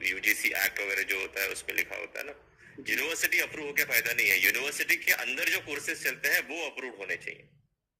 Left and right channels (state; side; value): identical; both; correlation 1.00